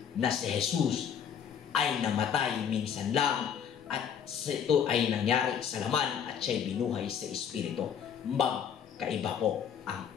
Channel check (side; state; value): right; quieter; 8.1 dB